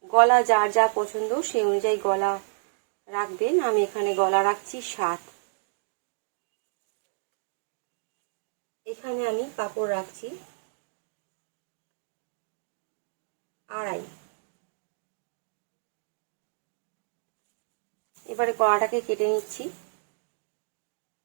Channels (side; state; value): left; silent; digital silence